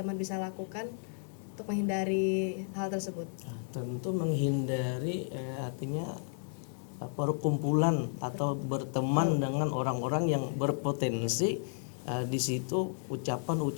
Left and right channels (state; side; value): silent; right; digital silence